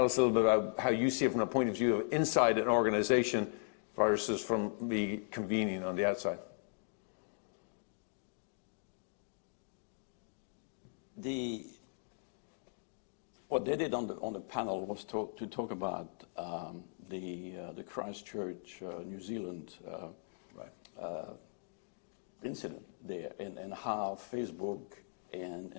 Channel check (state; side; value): silent; right; digital silence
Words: us a little bit about how you see it from a point of view of inside an organization versus from the convening on the outside. What they did on the panel was to talk about the Christchurch, New Zealand incident there, and how Facebook